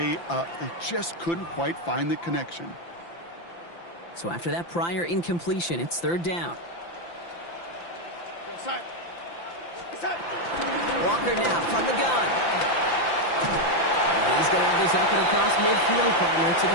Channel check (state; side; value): late; right; 5.9 ms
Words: up. They just couldn't quite find the connection. So after that prior incompletion, it's 3rd down. Walker now from the gun. And he's going to have this up and across midfield, partner, to the